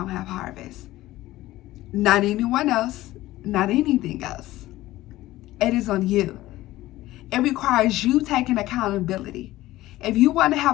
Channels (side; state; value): right; quieter; 16.5 dB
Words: have harvest. Not anyone else, not anything else. It is on you. It requires you taking accountability. If you want to